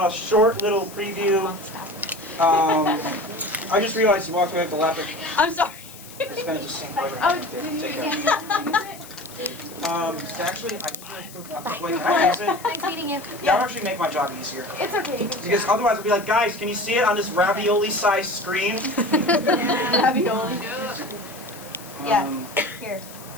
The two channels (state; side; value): noise; left; hiss, 18 dB below the sound